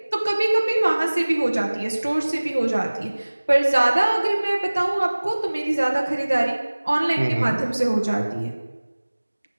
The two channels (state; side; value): inverted; both; correlation -1.00